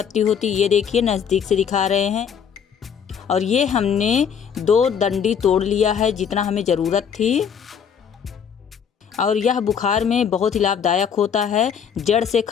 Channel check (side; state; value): right; quieter; 7.5 dB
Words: होती, ये देखिए नज़दीक से दिखा रहे हैं। और ये हमने 2 डंडी तोड़ लिया है, जितना हमें ज़रूरत थी। और यह बुखार में बहुत ही लाभदायक होता है, जड़ से